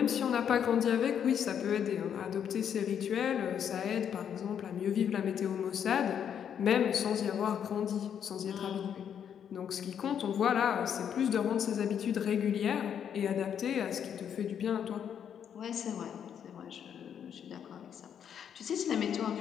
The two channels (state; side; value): quieter; right; 8.5 dB